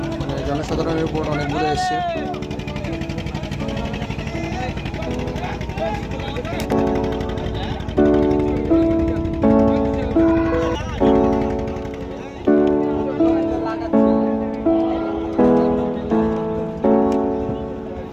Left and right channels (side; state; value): both; identical; correlation 1.00